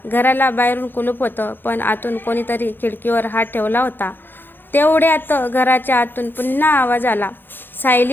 घराला बाहेरून कुलूप होतं, पण आतून कोणीतरी खिडकीवर हात ठेवला होता. तेवढ्यात घराच्या आतून पुन्हा आवाज आला,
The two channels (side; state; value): right; late; 0.098 ms